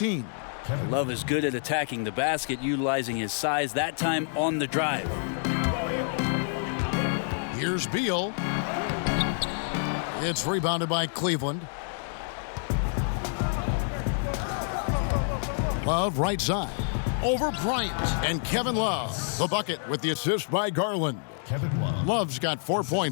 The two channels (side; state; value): right; silent; digital silence